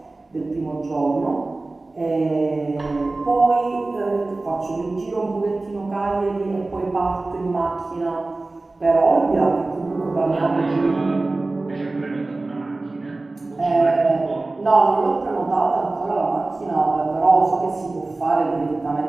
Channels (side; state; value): left; quieter; 3.2 dB